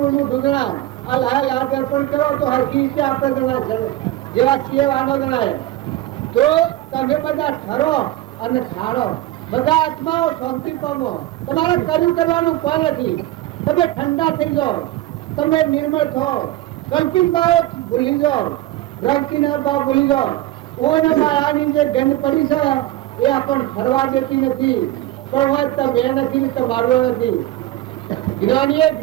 મૂઠું જણાય આ લાલ દર્પણ કરો તો હરકી રીતે આપણે જણાય જેવા છીએ વાનો જણાય। તો તમે બધા ઠરો અને ખાડો બધા આત્માઓ શાંતિ પામો તમારે કર્યું કરવાનું કોઈ નથી તમે ઠંડા થઈ જાઓ તમે નિર્મળ થાઓ કલ્પિત ભાવ ભૂલી જાઓ ભ્રાંતિના ભાવ ભૂલી જાઓ ઓને માયાની જે ગંધ પડી છે એ આપણને ફરવા દેતી નથી પણ હોય તમે નથી તો મારવો નથી। જ્ઞાનીએ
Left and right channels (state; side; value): quieter; left; 15.4 dB